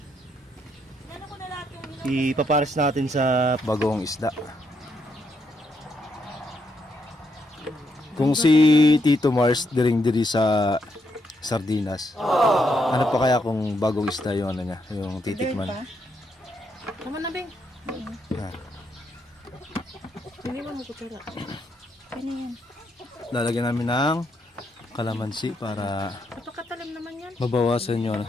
Nano ko na lahat yung Ipapares natin sa bagong isda. Kung si Tito Mars diring-diri sa sardinas. Ano pa kaya kung bagong isda yung ano niya, yung titikman? Tama na, Beng. Yan. Hindi mo kutsara. Ano yan? Lalagyan namin ng kalamansi para Napakatalim naman yan. mabawasan yung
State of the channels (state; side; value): normal; both; correlation 0.77